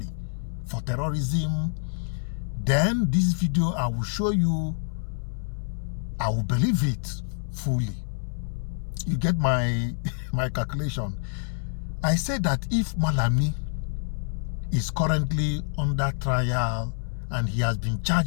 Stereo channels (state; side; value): silent; right; 60 dB below the other